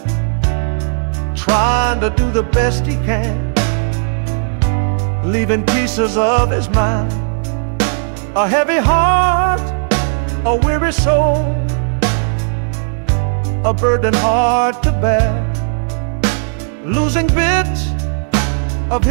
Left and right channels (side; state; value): left; silent; digital silence